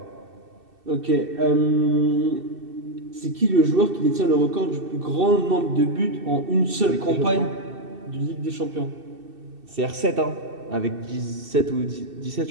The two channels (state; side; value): late; left; 2.7 ms